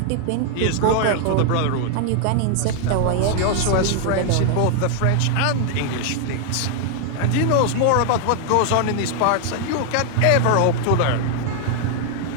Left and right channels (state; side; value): different; both; correlation 0.00